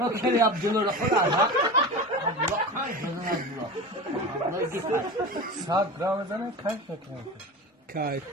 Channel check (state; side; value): normal; both; correlation 0.29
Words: کلی عبدالله خود علاقه عبدالله خان جزن عبدالله دیگر 100 گرم بزنه کاش نکنه کای